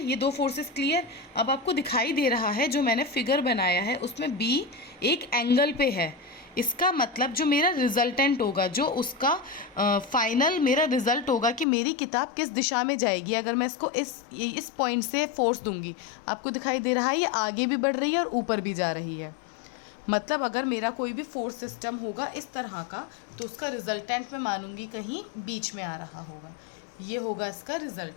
ये दो फोर्सेस क्लियर। अब आपको दिखाई दे रहा है जो मैंने फिगर बनाया है उसमें बी एक एंगल पे है, इसका मतलब जो मेरा रिजल्टेंट होगा, जो उसका फाइनल मेरा रिजल्ट होगा कि मेरी किताब किस दिशा में जाएगी अगर मैं इसको इस पॉइंट से फोर्स दूंगी। आपको दिखाई दे रहा है ये आगे भी बढ़ रही है और ऊपर भी जा रही है। मतलब अगर मेरा कोई भी फोर्स सिस्टम होगा इस तरह का तो उसका रिजल्टेंट मैं मानूंगी कहीं बीच में आ रहा होगा, ये होगा इसका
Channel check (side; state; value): right; drops out; at 11.7 s